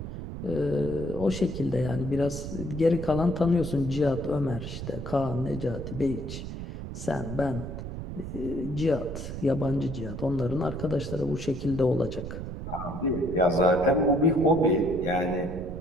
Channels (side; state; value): right; noise; rumble, 7 dB below the sound